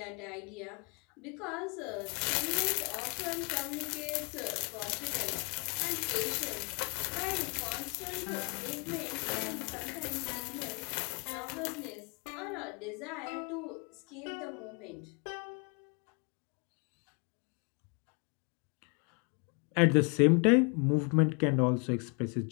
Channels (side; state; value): right; quieter; 34.0 dB